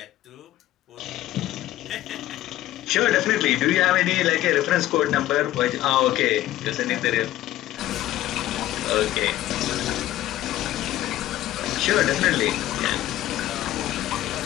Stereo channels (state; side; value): quieter; right; 14.3 dB